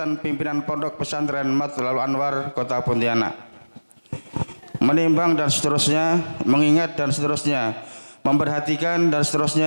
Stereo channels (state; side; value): inverted; both; correlation -1.00